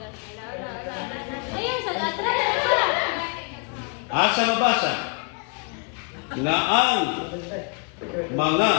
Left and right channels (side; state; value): right; quieter; 36.8 dB